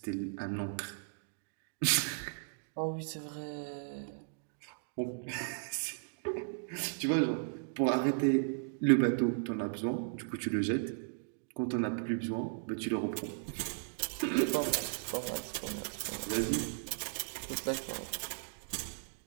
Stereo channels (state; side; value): silent; left; digital silence